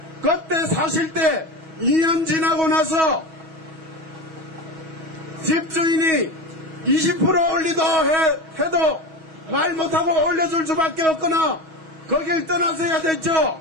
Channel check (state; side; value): late; left; 6.2 ms